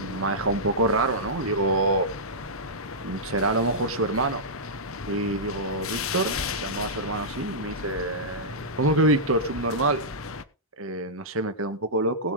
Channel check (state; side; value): normal; both; correlation -0.12